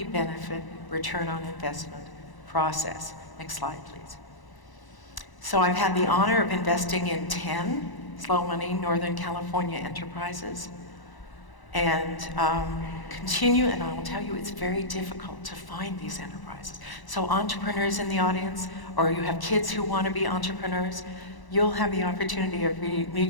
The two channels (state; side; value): late; right; 1.0 ms